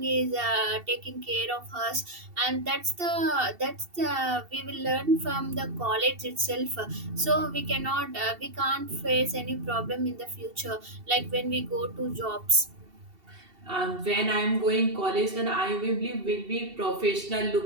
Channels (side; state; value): left; late; 2.7 ms